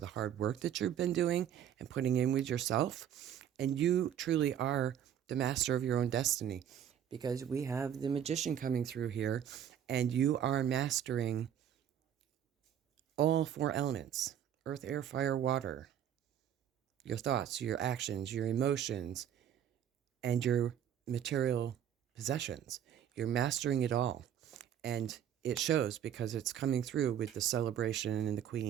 hard work that you've been doing and putting in with yourself. And you truly are the master of your own destiny, because we have the Magician coming through here, and you are mastering all four elements: earth, air, fire, water. Your thoughts, your actions, your emotions, and your material possessions. You're mastering it all. And it shows, because it's coming through with the celebration and the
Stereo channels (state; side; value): quieter; left; 9.8 dB